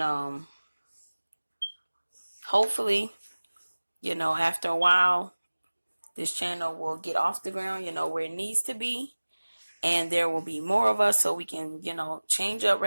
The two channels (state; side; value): inverted; both; correlation -1.00